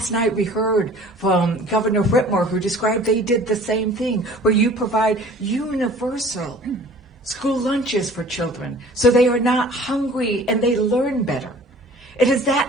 night we heard from Governor Whitmer, who described they did the same thing, where you provide universal school lunches for children so they are not hungry and they learn better. It is that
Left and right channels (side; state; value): both; normal; correlation 0.48